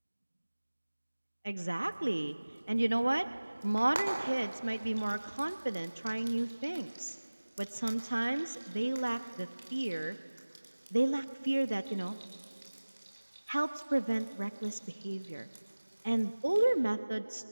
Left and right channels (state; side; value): inverted; both; correlation -1.00